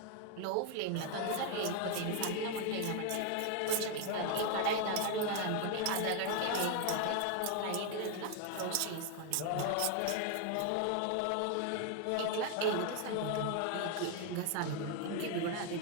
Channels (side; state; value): both; different; correlation 0.01